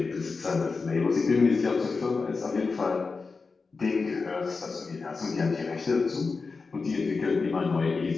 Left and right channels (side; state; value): right; quieter; 4.4 dB